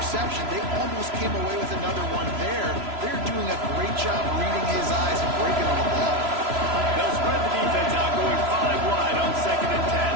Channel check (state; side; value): late; left; 3.0 ms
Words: They almost came away with another one there. They're doing a great job reading his eyes and breaking on the ball. They'll spread the defense out, going 5 wide on 2nd and 10.